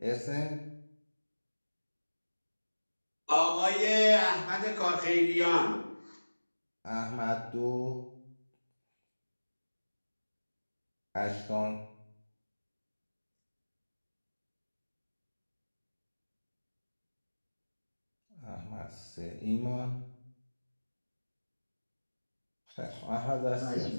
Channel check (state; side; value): inverted; both; correlation -1.00